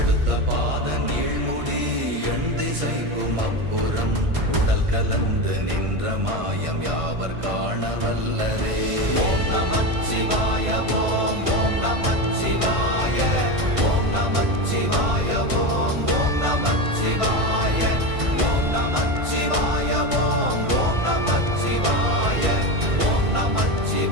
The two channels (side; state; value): left; late; 1.5 ms